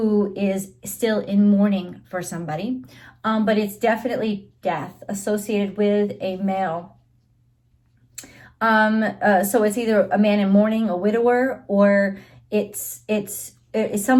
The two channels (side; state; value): both; identical; correlation 1.00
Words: is still in mourning for somebody. But it's definitely death associated with a male. So it's either a man in mourning, a widower, or it's